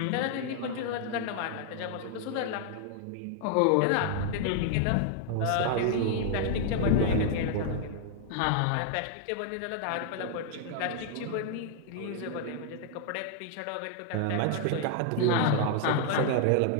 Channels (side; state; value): both; different; correlation 0.00